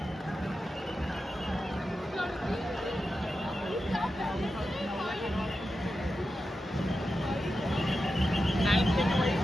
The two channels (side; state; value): both; normal; correlation 0.90